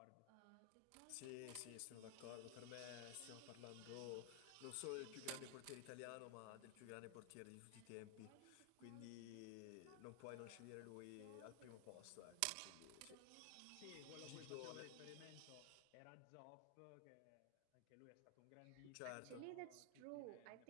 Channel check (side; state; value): both; different; correlation 0.00